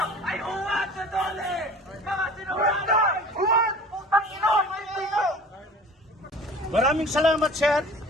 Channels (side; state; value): both; normal; correlation 0.44